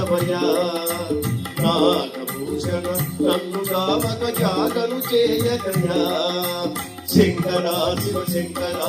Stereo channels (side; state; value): both; identical; correlation 1.00